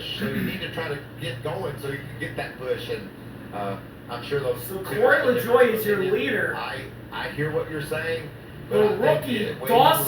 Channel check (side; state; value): both; identical; correlation 1.00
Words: So you need to try to get going so you can get that push. And I'm sure those. So Corey LaJoie is your leader. I hear what you're saying. The rookie,